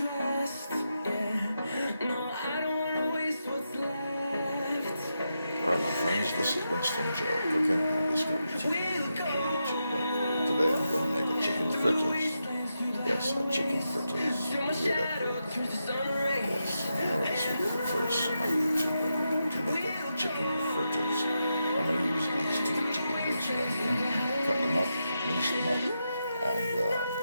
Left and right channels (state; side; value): inverted; both; correlation -0.87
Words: my friends, this is Winston Joe cooking and Discovery TV YouTube. Today I'm going to make a chicken fritters. Yes, a chicken fritters. You hear that correctly? Yes, I know this will be the first on YouTube to make a chicken fritters. I'm going to use these two chicken breasts right here. Cut them up, mince them up, and